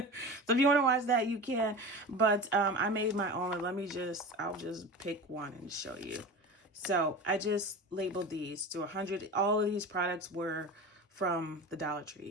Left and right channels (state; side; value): normal; both; correlation 0.31